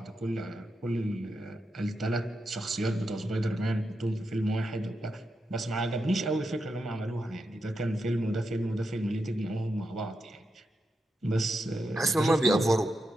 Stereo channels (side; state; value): both; normal; correlation 0.86